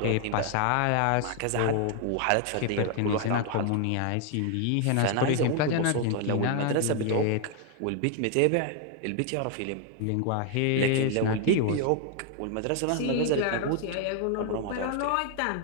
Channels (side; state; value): both; different; correlation 0.00